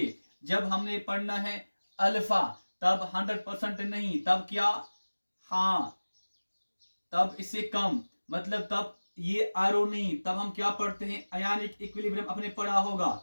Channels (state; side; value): inverted; both; correlation -1.00